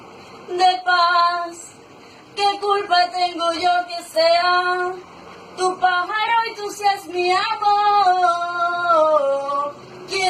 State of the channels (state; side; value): identical; both; correlation 1.00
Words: de paz. ¿Qué culpa tengo yo que sea tu pájaro y tú seas mi amor?